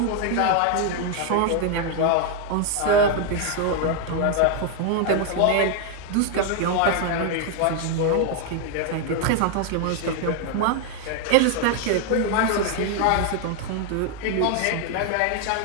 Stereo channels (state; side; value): different; both; correlation 0.01